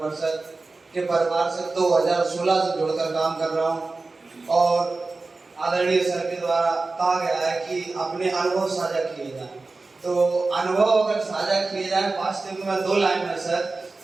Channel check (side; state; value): left; quieter; 3.6 dB